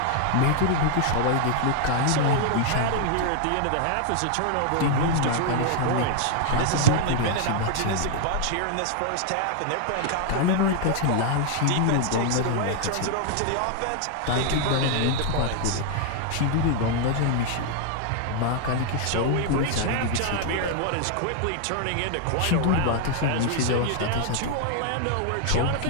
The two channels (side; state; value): both; different; correlation 0.00